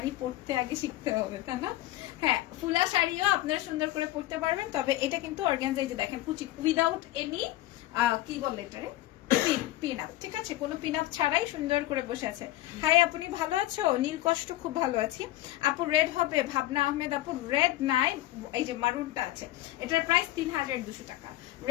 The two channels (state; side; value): quieter; right; 16.4 dB